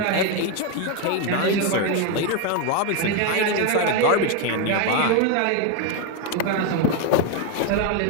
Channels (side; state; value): both; different; correlation 0.02